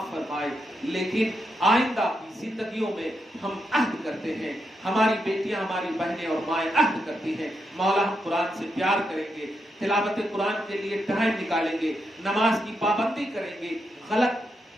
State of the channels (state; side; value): normal; both; correlation 0.83